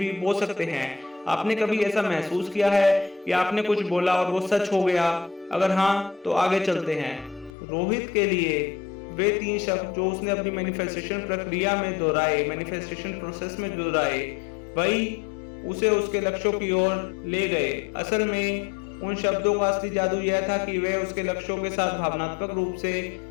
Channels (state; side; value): drops out; right; at 7.5 s